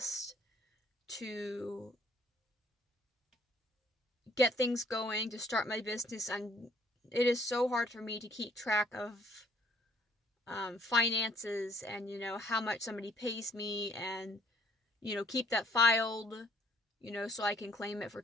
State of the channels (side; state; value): both; normal; correlation 0.62